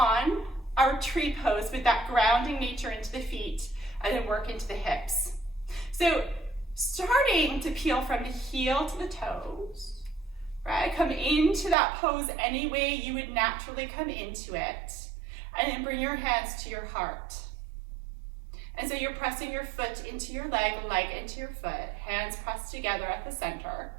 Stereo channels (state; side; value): drops out; left; at 11.8 s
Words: our tree pose with that grounding nature into the feet and then work into the hips. So starting to peel from the heel to the toes, right? Come into that pose any way you would naturally come into it, and then bring your hands to your heart. And so you're pressing your foot into your leg into your foot, hands pressed together at the center.